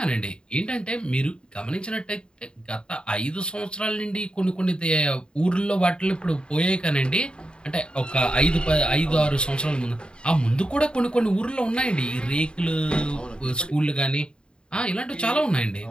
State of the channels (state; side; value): late; right; 0.052 ms